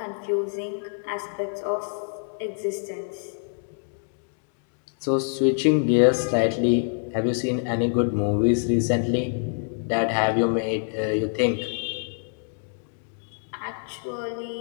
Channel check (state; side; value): silent; right; 61 dB below the other